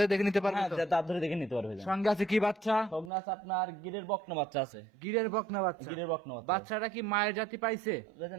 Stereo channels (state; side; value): drops out; left; at 3.1 s